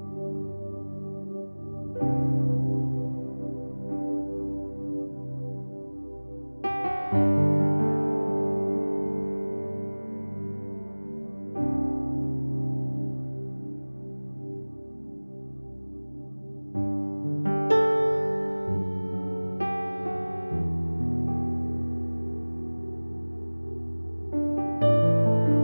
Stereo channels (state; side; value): inverted; both; correlation -1.00